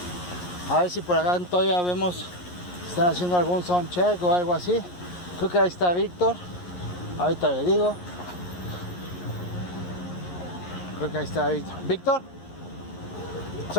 A ver si por acá todavía vemos si están haciendo algún sound check o algo así. Creo que ahí está Víctor. Ahorita le digo. Creo que ahí está Víctor. ¿Víctor?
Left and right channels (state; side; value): late; right; 11 ms